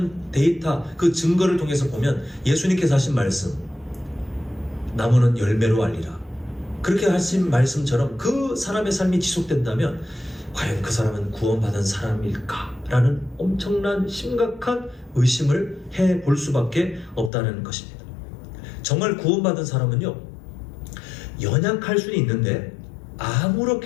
데이터, 그 증거를 통해서 보면 예수님께서 하신 말씀, 나무는 열매로 알리라, 그렇게 하신 말씀처럼 그 사람의 삶이 지속된다면 과연 그 사람은 구원받은 사람일까? 라는 엄청난 심각한 의심을 해볼 수밖에 없다는 것입니다. 정말 구원받은 사람은요, 연약할 수는 있는데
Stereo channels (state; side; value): drops out; right; at 17.3 s